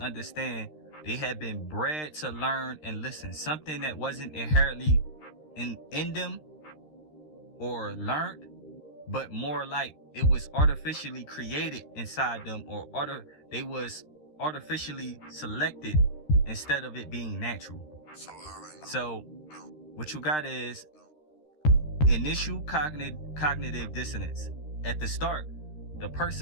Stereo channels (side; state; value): right; late; 13 ms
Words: they have been bred to learn and listen. Something that wasn't inherently in them or learned, but more like it was artificially created inside them, or they was artificially selected instead of it being natural. So what you got is initial cognitive dissonance. At the start, the